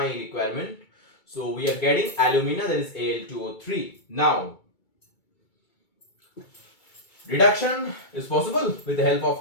requirement. So we are getting alumina, that is Al2O3. Now reduction is possible with the help of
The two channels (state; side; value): late; right; 2.3 ms